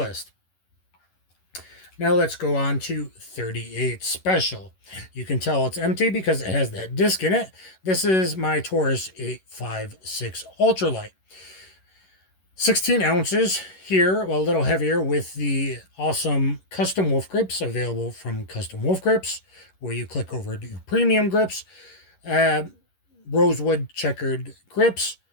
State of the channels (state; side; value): late; right; 11 ms